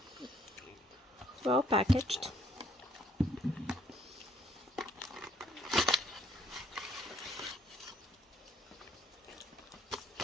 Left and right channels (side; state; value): both; normal; correlation 0.65